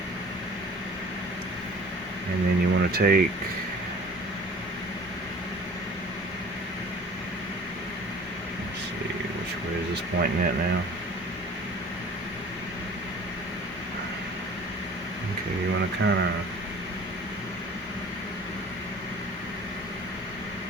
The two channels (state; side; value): normal; both; correlation 0.46